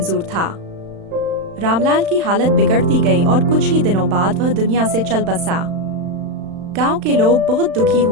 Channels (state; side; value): late; left; 35 ms